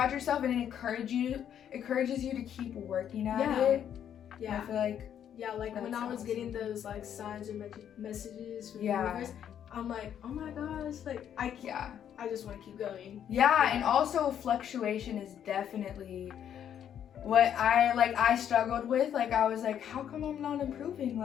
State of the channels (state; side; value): quieter; right; 9.4 dB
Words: yourself, and it encourages you to keep working at Yeah. it. I yeah, feel like yeah, like when that's I was awesome. getting those like signs or messages from Yeah. the universe, I'm like, oh my gosh, like I just want to keep going. yeah, and also fluctuation is definitely what I struggled with. Like I was like, how come I'm not improving?